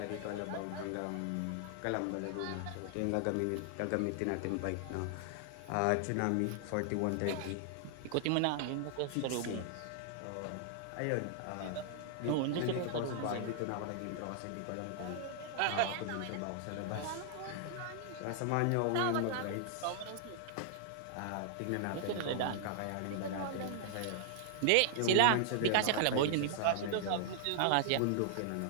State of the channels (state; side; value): different; both; correlation -0.01